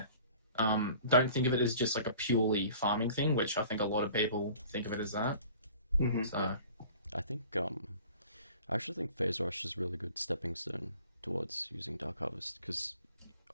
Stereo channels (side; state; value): both; inverted; correlation -0.48